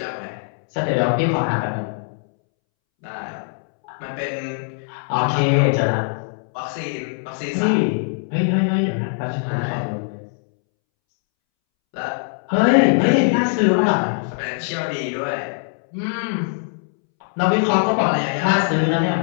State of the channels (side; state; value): right; silent; 65 dB below the other